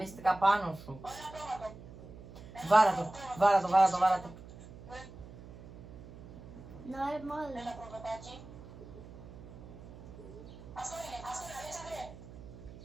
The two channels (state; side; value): noise; right; hum, 16 dB below the sound